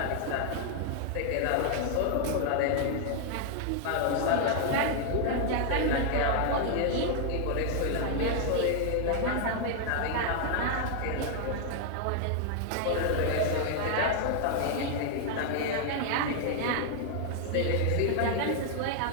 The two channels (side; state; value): both; different; correlation 0.00